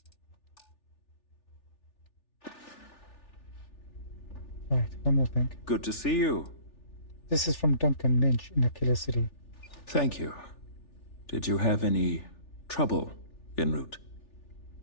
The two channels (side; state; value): right; late; 3.4 ms